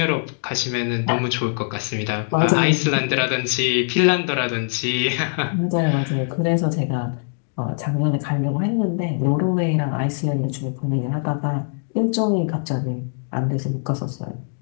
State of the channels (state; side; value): silent; right; digital silence